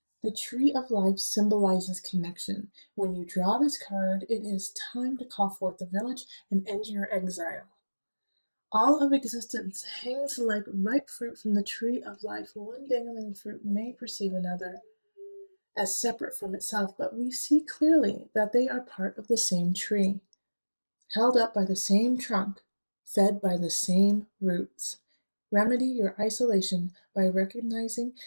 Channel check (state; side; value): inverted; both; correlation -1.00